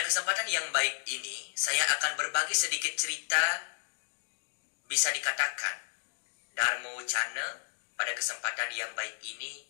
kesempatan yang baik ini, saya akan berbagi sedikit cerita, bisa dikatakan Dharma Wacana. Pada kesempatan yang baik ini,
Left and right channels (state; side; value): silent; right; digital silence